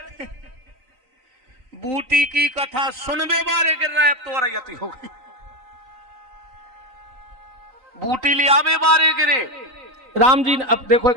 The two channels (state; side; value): late; left; 3.9 ms